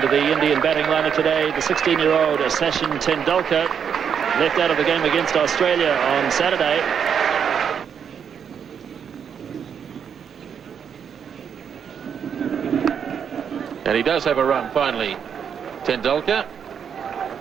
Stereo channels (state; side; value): quieter; left; 7.6 dB